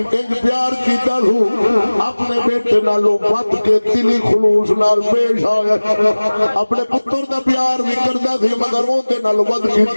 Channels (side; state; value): both; inverted; correlation -1.00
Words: ایک پیار کیتا ہو اپنے بیٹے نالوں ود کے دلی خلوص نال پیش آیا اپنے پتر دا پیار بھی کردا سی مگر وہ دے نال ود